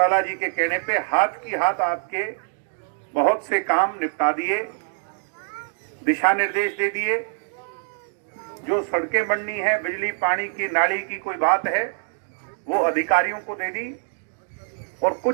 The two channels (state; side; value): silent; left; digital silence